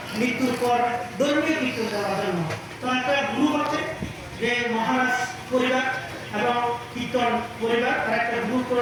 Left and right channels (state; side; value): identical; both; correlation 1.00